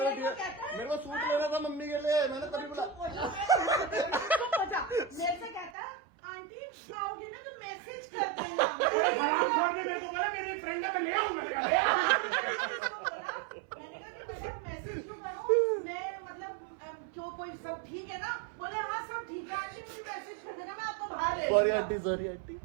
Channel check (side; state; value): left; drops out; at 5.7 s